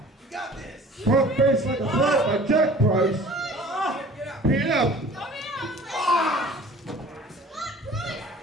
Front face like a flat by Jack Price. PF.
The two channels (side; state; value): both; normal; correlation 0.47